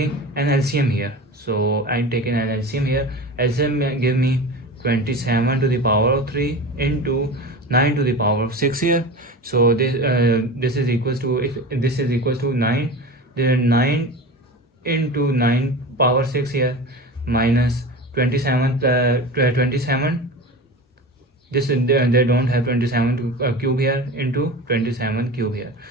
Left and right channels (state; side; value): normal; both; correlation 0.30